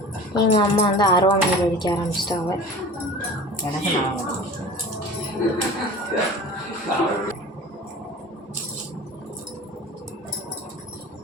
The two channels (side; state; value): both; normal; correlation 0.38